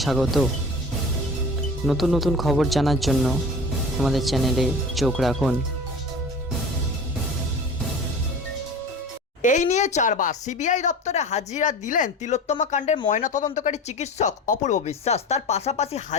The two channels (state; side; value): normal; both; correlation 0.36